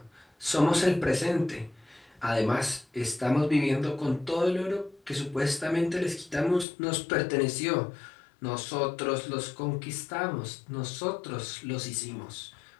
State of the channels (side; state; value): right; drops out; at 6.7 s